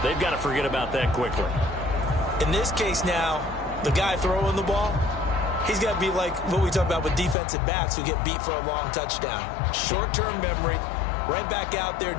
they've got to forget about that quickly. In this case now, the guy throwing the ball, he's got to be like what we talk about with defensive backs who get beat for a long touchdown. Short-term memory, right back out there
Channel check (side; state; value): right; drops out; at 7.4 s